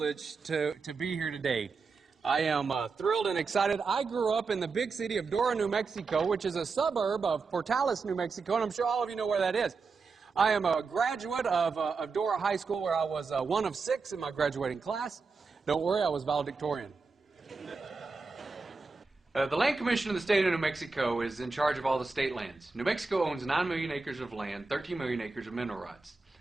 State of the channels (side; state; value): left; quieter; 4.5 dB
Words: to be here today. I am thrilled and excited. I grew up in the big city of Dora, New Mexico, which is a suburb of Portales, New Mexico, and I'm sure all of you know where that is. I am a graduate of Dora High School, where I was one of 6 in my graduating class. Don't worry, I was valedictorian. The Land Commission of the state of New Mexico is in charge of all the state lands. New Mexico owns 9 million acres of land, 13 million acres of mineral rights.